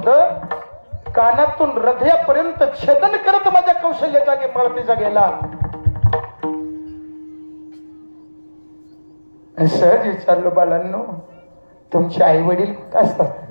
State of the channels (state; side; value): inverted; both; correlation -1.00